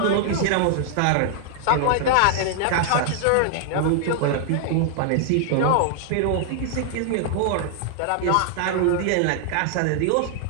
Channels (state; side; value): different; both; correlation 0.00